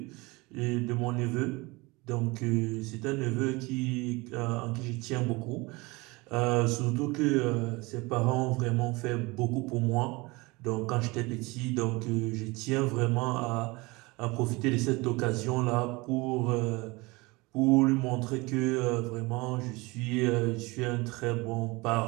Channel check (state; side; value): quieter; left; 24.2 dB